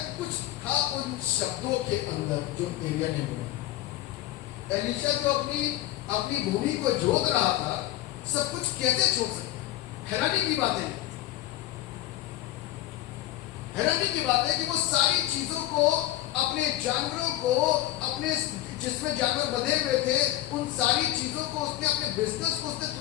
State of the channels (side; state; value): right; quieter; 14.6 dB